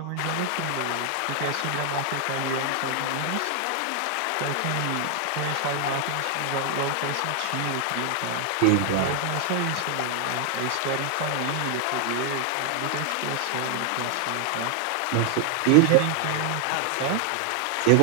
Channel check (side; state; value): both; different; correlation 0.00